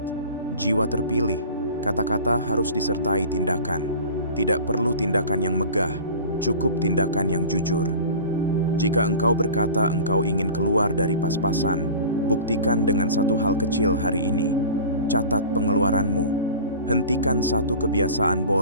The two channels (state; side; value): inverted; both; correlation -0.38